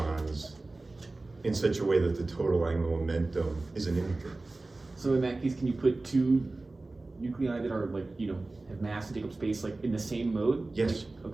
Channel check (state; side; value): quieter; left; 3.2 dB